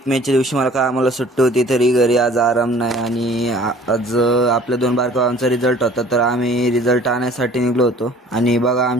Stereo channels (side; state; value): both; normal; correlation 0.51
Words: मेच्या दिवशी मला काय आम्हाला सुट्टी होती, तरी घरी आज आराम नाही. आणि आज आपल्या 2 बारकावांचा रिझल्ट होता, तर आम्ही रिझल्ट आणण्यासाठी निघलो होतो. आणि बघा,